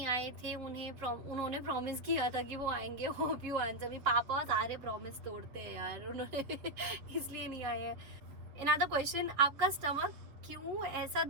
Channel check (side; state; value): left; late; 7.4 ms